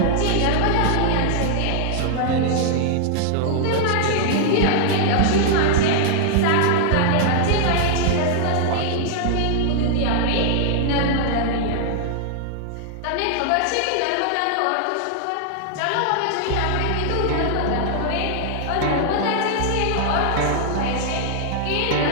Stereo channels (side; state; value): both; different; correlation -0.01